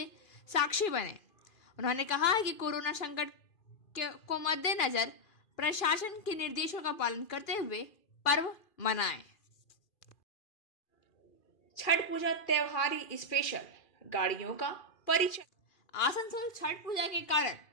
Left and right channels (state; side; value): late; right; 2.4 ms